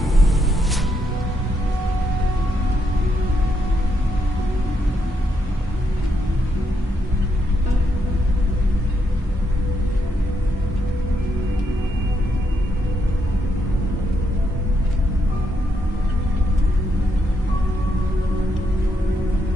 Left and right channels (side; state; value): both; normal; correlation 0.78